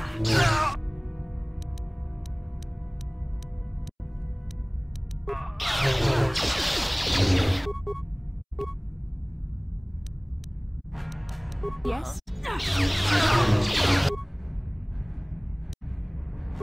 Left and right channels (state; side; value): identical; both; correlation 1.00